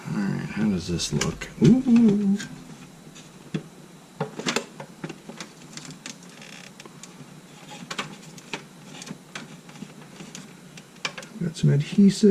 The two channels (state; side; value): identical; both; correlation 1.00